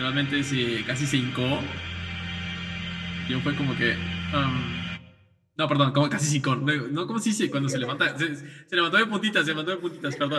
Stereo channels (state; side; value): identical; both; correlation 1.00